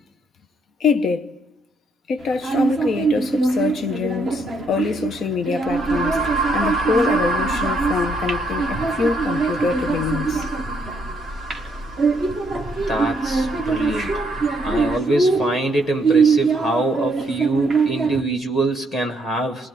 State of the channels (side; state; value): both; normal; correlation 0.72